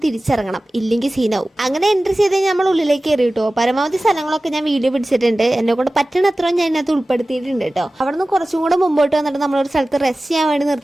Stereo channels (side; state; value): both; normal; correlation 0.96